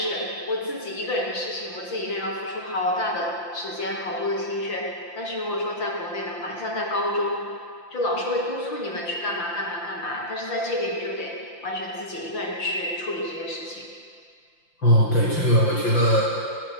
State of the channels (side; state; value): right; late; 5.8 ms